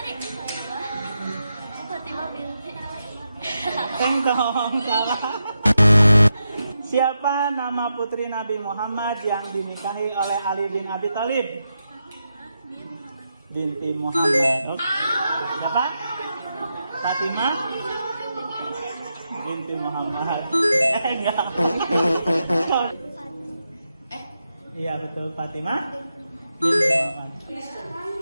tadi? Fatimah binti. Tengkong salah. Siapa nama putri Nabi Muhammad yang dinikahi oleh Ali bin Abi Thalib? Binti Muhammad. Oke. Siapa? Fatimah binti Muhammad. Enggak. Iya betul, Fatimah binti Muhammad.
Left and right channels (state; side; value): inverted; both; correlation -0.86